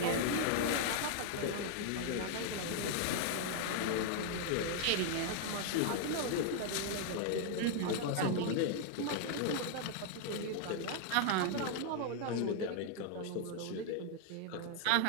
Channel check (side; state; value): both; different; correlation 0.00